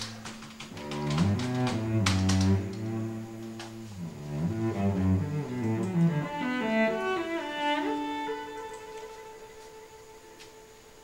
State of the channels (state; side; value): identical; both; correlation 1.00